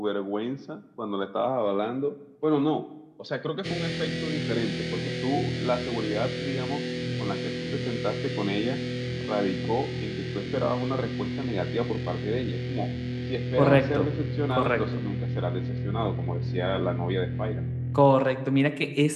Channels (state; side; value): identical; both; correlation 1.00